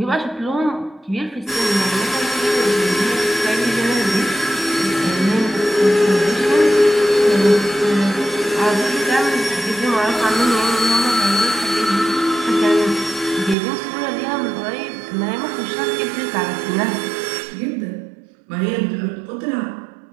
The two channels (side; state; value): left; drops out; at 13.6 s